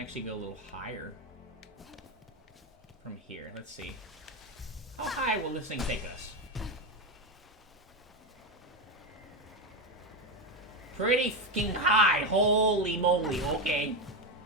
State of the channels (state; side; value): normal; both; correlation 0.12